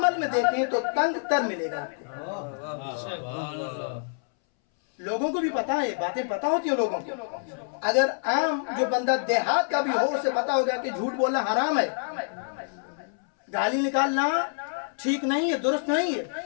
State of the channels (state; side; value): silent; right; 60 dB below the other